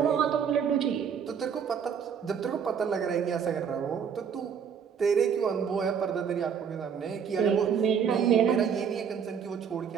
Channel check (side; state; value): left; quieter; 7.3 dB